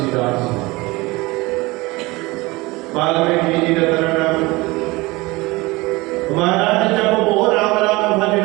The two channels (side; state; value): left; quieter; 22.5 dB